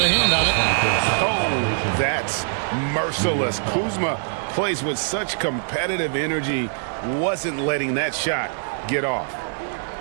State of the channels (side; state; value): left; silent; digital silence